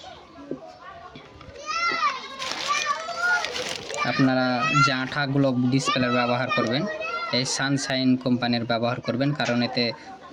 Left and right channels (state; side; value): identical; both; correlation 1.00